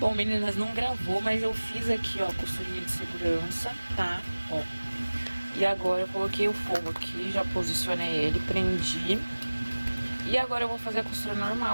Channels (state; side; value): inverted; both; correlation -1.00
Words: meninas, não gravou, mas eu fiz aqui, ó, costurinha de segurança, tá? Ó. E agora eu coloquei o forro aqui, já posicionei ele, prendi. E agora eu vou fazer a costura